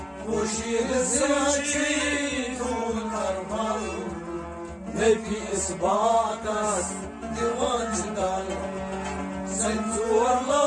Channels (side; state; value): both; identical; correlation 1.00